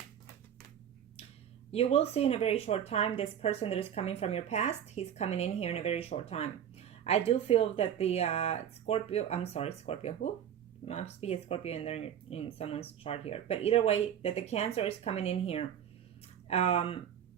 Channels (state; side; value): quieter; left; 9.4 dB